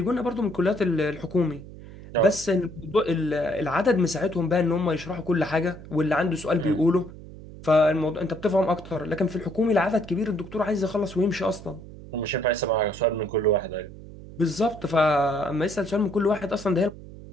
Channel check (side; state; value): right; noise; hum, 16 dB below the sound